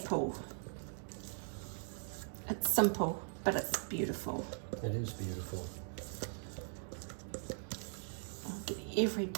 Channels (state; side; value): silent; left; digital silence